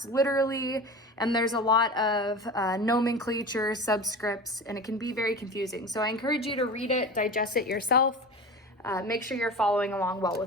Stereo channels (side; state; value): both; normal; correlation 0.32